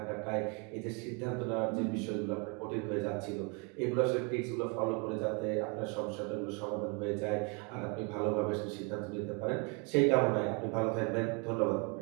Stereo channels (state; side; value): quieter; left; 31.9 dB